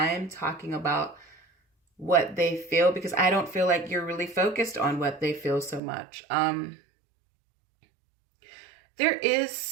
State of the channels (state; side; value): drops out; left; at 5.8 s